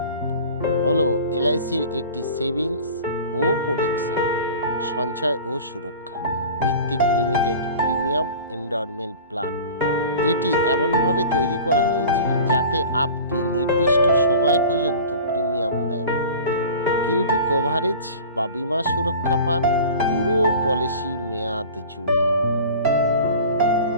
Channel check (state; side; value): inverted; both; correlation -0.39